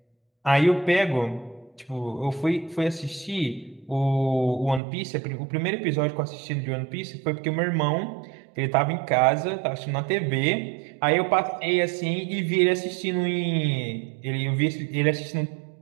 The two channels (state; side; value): drops out; left; at 4.8 s